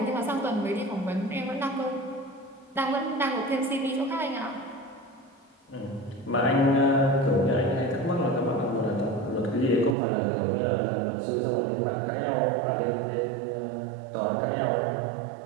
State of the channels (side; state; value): left; drops out; at 10.0 s